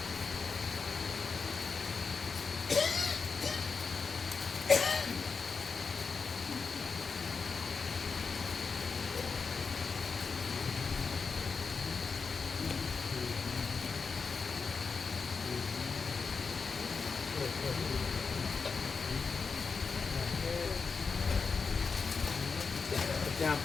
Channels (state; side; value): quieter; right; 5.0 dB